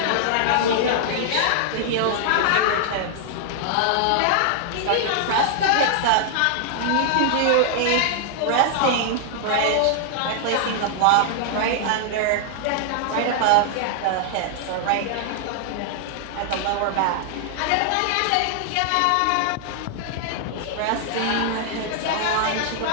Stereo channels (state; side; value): different; both; correlation -0.01